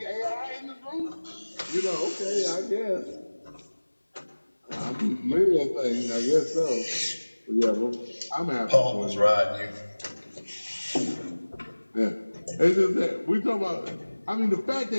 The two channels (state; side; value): inverted; both; correlation -1.00